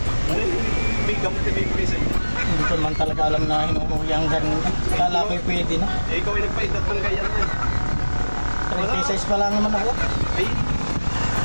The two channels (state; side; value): inverted; both; correlation -1.00